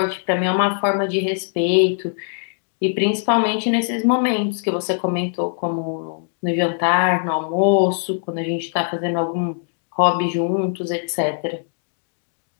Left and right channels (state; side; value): silent; right; digital silence